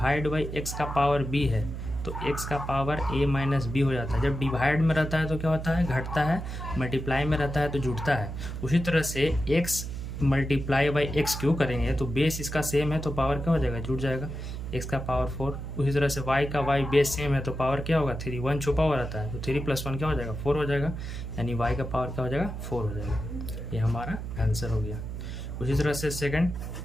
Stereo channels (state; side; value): noise; right; hum, 6 dB below the sound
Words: by x का पावर b है तो x का पावर a - b हो जाता है। जब डिवाइड में रहता है तो क्या होता है, घटता है, मल्टीप्लाई में रहता है तो जुड़ता है। उसी तरह से x × x क्यों करेंगे तो बेस इसका सेम है तो पावर क्या हो जाएगा, जुड़ जाएगा, x का पावर 4। उसी तरह से y का y बेस सेम है तो पावर क्या होगा, 3, 1 छुपा हुआ रहता है तो 3 + 1 क्या हो जाएगा, 4 हो जाएगा, यानी y का पावर क्या हो जाएगा, 4 हो जाएगा। ये हमारा आंसर हो गया। उसी तरह से सेकंड,